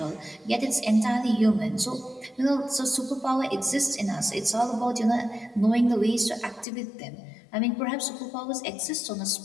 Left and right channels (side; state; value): right; drops out; at 6.7 s